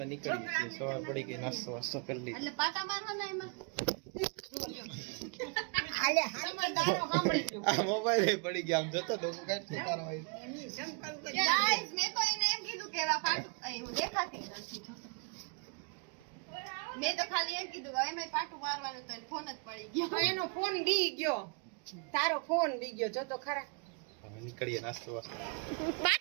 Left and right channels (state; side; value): quieter; left; 35.3 dB